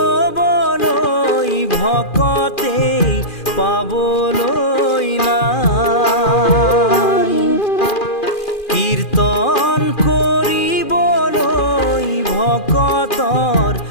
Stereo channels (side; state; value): right; late; 2.4 ms